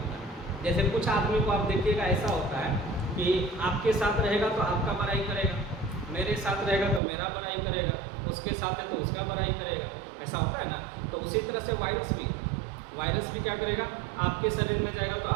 है। जैसे कुछ आदमी को आप देखिएगा ऐसा होता है कि आपके साथ रहेगा तो आपका बड़ाई करेगा, मेरे साथ रहेगा तो मेरा बड़ाई करेगा, उसके साथ है तो उसका बड़ाई करेगा, ऐसा होता है ना। तो उसी तरह से वायरस भी क्या करेगा, आपके शरीर में जाएगा तो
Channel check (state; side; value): drops out; left; at 7.0 s